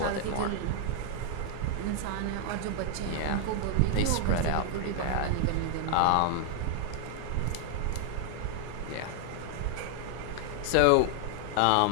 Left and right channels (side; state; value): both; different; correlation 0.00